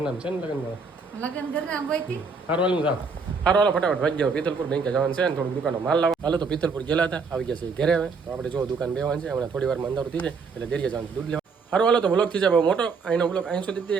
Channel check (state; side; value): quieter; left; 4.8 dB